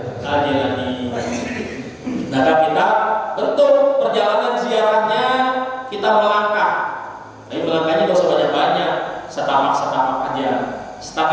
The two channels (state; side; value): identical; both; correlation 1.00